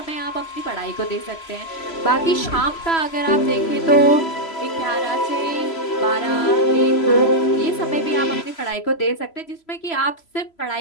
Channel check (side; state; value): right; late; 3.0 ms